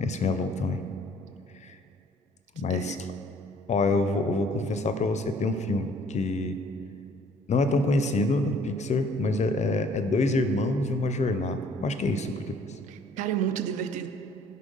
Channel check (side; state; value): both; normal; correlation 0.58